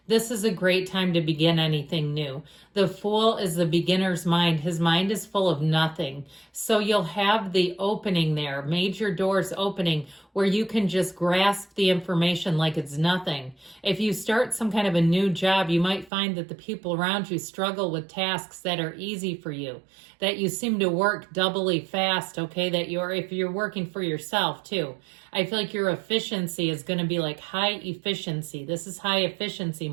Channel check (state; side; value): drops out; left; at 16.1 s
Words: this is a great time to begin anything new. The Fool is the beginner's mind. His mind is full of nothing. So you'll have the opening there, major doors opening, where you can just grasp the information like it's nothing. If you start some kind of a new job, you might find that the people around you struggle with tasks that are easy for you, that you seem to work doubly fast, okay? That if you're working for yourself too. I feel like your efficiency is going to be like high efficiency. This is high efficiency